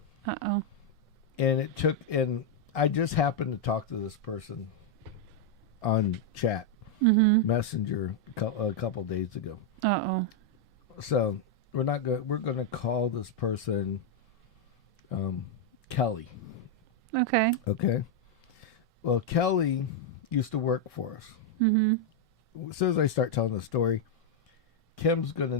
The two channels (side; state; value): both; normal; correlation 0.00